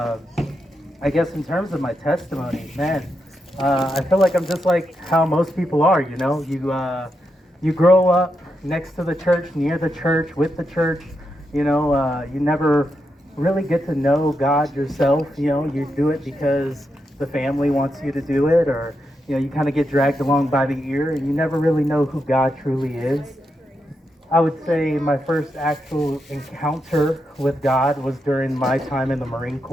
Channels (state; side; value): normal; both; correlation 0.84